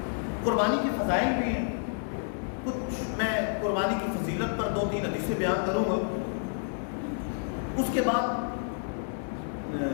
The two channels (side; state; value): right; silent; 58 dB below the other